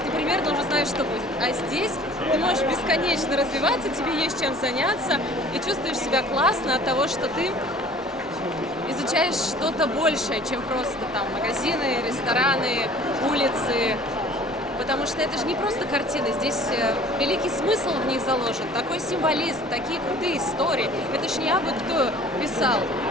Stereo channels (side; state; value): both; normal; correlation 0.49